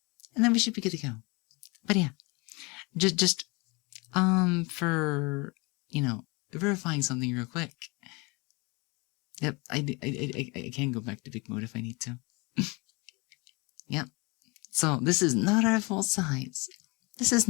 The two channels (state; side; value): quieter; right; 27.5 dB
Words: And then we should be good to go. But yeah, just for, you know, verifying something real quick. Yep, I can go back to big mode if I need to. Yep. So this is not our full size. This is